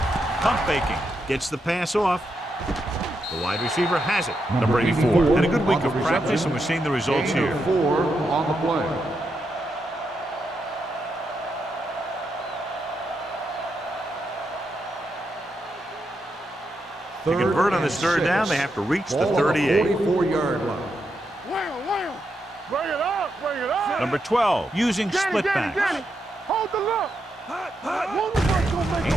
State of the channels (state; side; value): normal; both; correlation 0.83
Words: Pump faking. Gets the pass off. The wide receiver has it. Number 84. Had a good week of practice, and we're seeing the results here. 4 on the play. To convert on this third down, they have to reach the 38. 44-yard line. Wham. Bring it up. Bring it up. Number 12, using split backs. Hold the look.